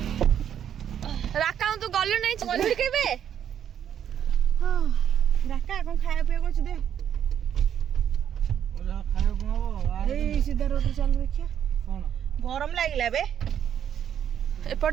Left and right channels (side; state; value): left; quieter; 9.3 dB